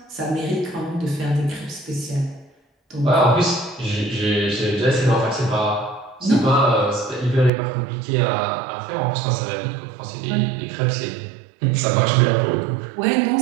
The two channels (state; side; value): drops out; left; at 7.5 s